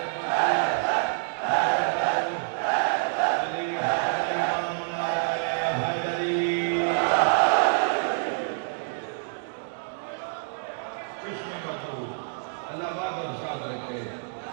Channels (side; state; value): left; silent; digital silence